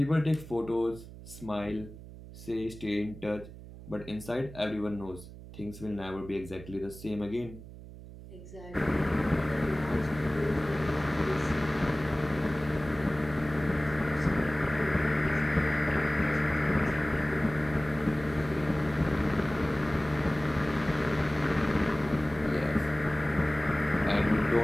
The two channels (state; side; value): noise; right; hum, 15 dB below the sound